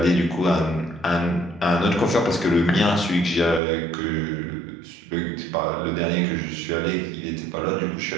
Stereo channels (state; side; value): drops out; left; at 3.6 s